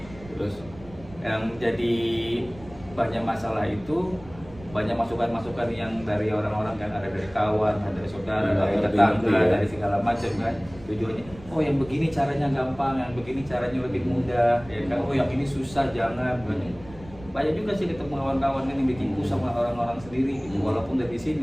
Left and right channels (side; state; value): right; noise; rumble, 19 dB below the sound